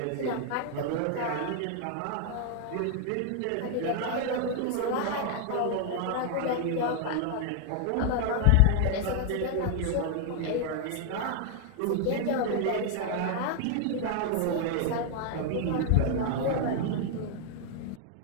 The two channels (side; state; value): both; different; correlation 0.00